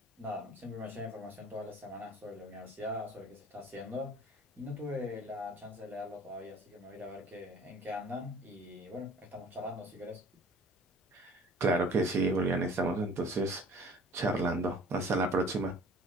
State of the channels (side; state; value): both; normal; correlation 0.48